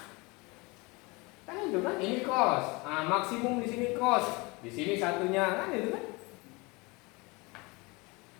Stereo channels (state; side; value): quieter; right; 26.2 dB